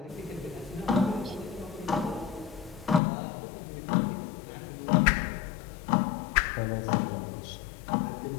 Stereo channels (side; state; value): right; drops out; at 3.0 s